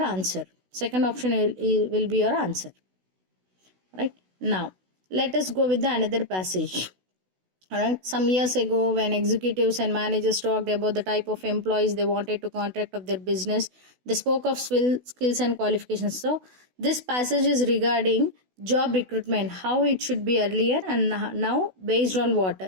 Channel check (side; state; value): left; late; 16 ms